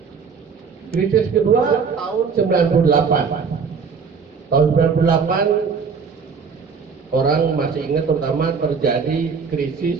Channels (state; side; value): quieter; left; 5.7 dB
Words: Krisis kedua tahun 98. Tahun 98 orang masih ingat terutama terjadi